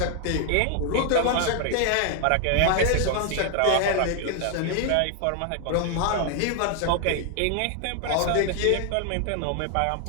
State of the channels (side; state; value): both; different; correlation 0.00